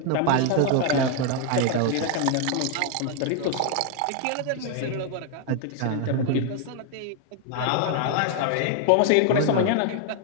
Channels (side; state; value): both; different; correlation 0.00